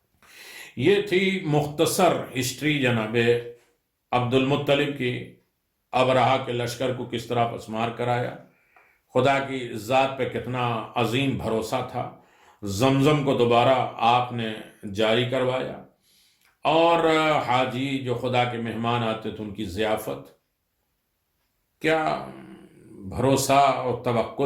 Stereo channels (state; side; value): identical; both; correlation 1.00